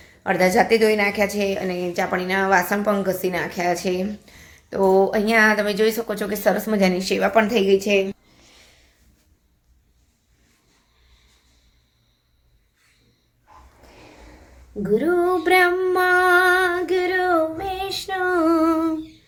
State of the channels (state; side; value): identical; both; correlation 1.00